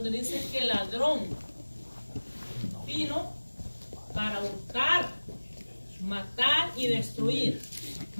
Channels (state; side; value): inverted; both; correlation -1.00